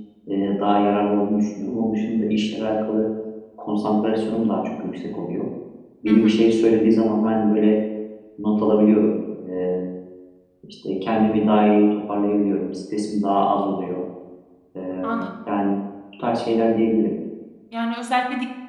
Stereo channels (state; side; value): identical; both; correlation 1.00